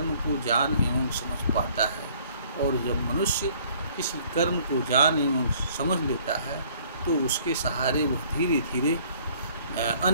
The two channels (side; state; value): both; inverted; correlation -0.58